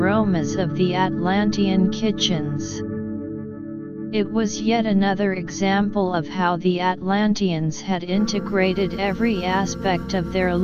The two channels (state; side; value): identical; both; correlation 1.00